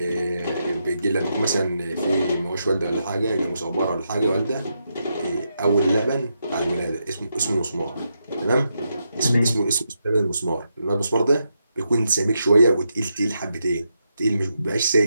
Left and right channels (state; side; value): inverted; both; correlation -0.83